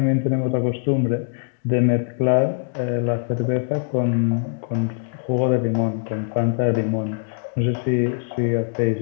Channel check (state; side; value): silent; right; digital silence